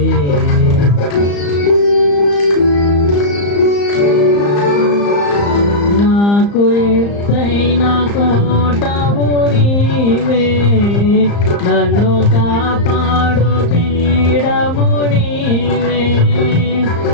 నాకు ఎత్తైన కోటవు నీవే, నన్ను కాపాడు పీడము నీవే,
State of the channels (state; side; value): late; right; 35 ms